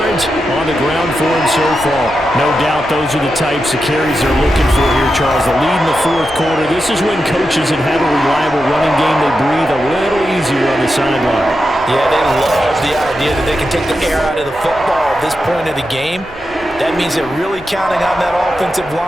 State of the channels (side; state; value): both; normal; correlation 0.88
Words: on the ground for him so far. No doubt those are the types of carries they're looking for here, Charles. The lead in the 4th quarter. This is when coaches that have a reliable running game, they breathe a little easier on the sideline. Yeah, they love the idea that they can take the air out of the football at this point of the game. That means they're really counting on that offensive